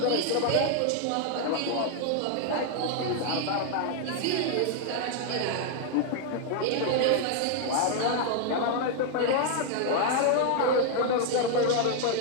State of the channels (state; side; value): different; both; correlation 0.00